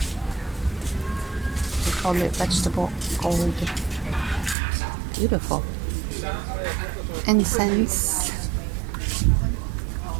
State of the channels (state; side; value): drops out; left; at 4.5 s